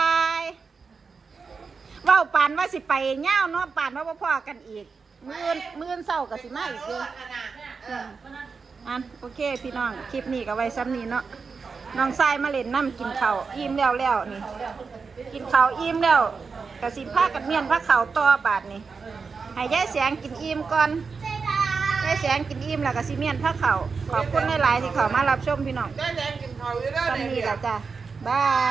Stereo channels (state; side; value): quieter; left; 5.0 dB